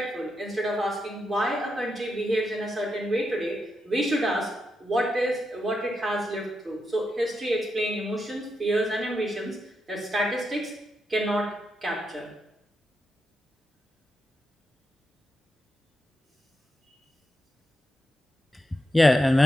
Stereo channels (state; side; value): normal; both; correlation 0.85